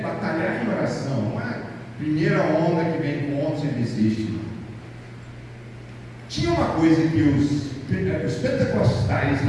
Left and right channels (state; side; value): identical; both; correlation 1.00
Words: batalhar em oração. Não é a primeira onda que vem com onda e desiste. Tinha uma coisa que os pentecostais